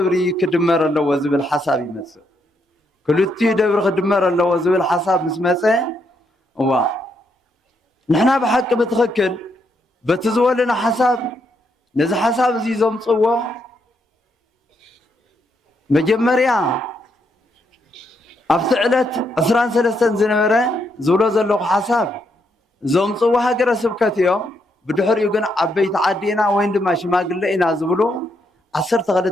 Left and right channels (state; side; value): normal; both; correlation 0.77